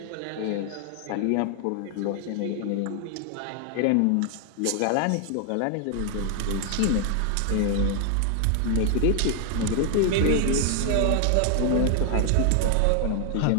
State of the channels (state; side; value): different; both; correlation 0.00